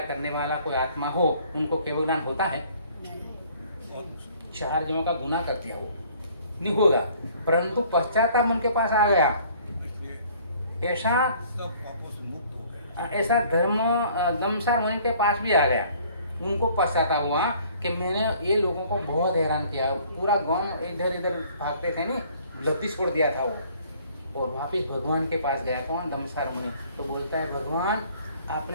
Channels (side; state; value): both; inverted; correlation -0.56